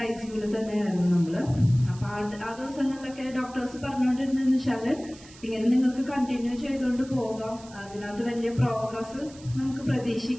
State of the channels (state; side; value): noise; right; hiss, 21 dB below the sound